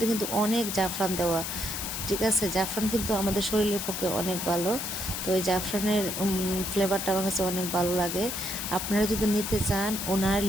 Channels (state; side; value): noise; left; hiss, 4 dB below the sound